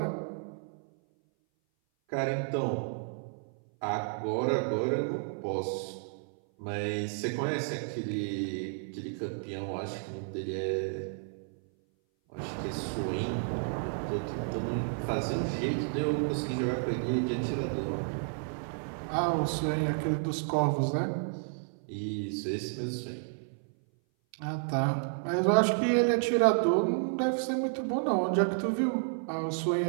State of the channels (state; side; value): silent; left; 57 dB below the other